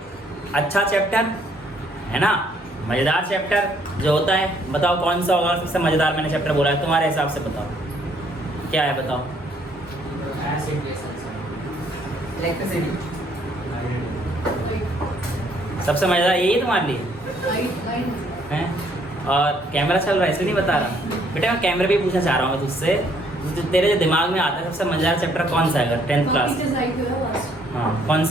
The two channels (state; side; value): normal; both; correlation 0.66